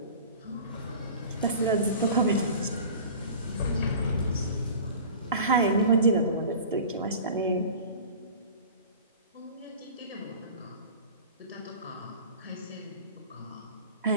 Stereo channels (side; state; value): both; inverted; correlation -0.39